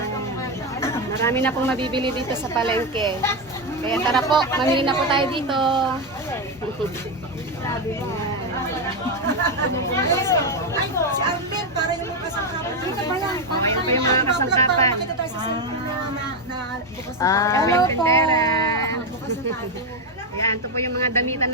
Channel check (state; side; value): normal; both; correlation 0.08